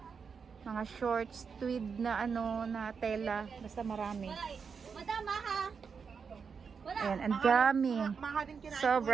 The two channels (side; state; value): left; quieter; 5.9 dB